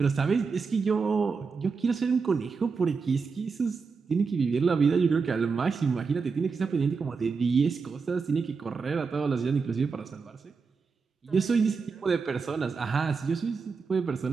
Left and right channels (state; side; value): quieter; left; 5.0 dB